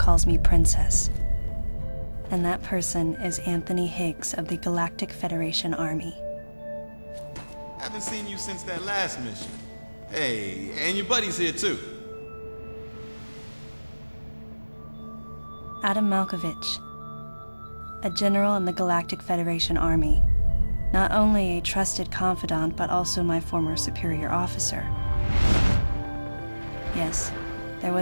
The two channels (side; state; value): both; inverted; correlation -1.00